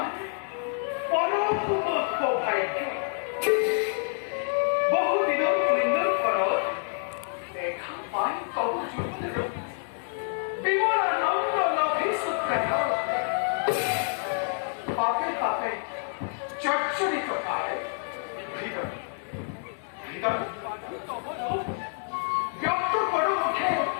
পরম ভাগ্য বহুদিনের পুণ্যর ফলত দেখা পাই তব যুগের বিমলানন্দ নভি সূত্রায় পাপে পাপে চর্চরিত কালে হৃদয় হৃদয় ব্যক্ত করো মুখে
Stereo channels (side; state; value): right; silent; 59 dB below the other